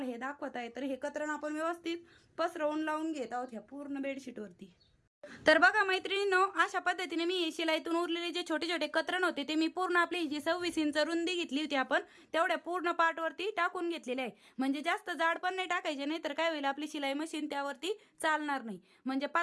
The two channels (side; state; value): both; identical; correlation 1.00